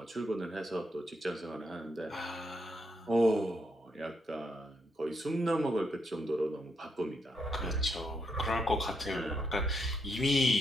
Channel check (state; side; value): normal; both; correlation 0.79